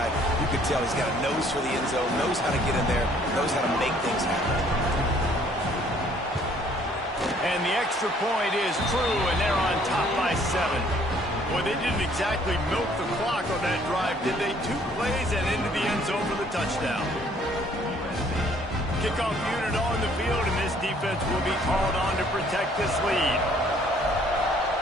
You can tell he's got a nose for the end zone, knows how to get in there, knows how to make things happen. And the extra point is true, and they're on top by 7. Boy, they didn't exactly milk the clock on that drive, did they? 2 plays and into the end zone for the touchdown. Kickoff unit on the field, and this defense will be called on to protect this lead.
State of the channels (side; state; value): both; normal; correlation 0.60